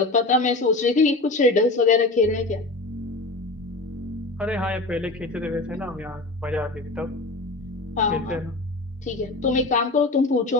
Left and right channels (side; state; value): right; quieter; 3.0 dB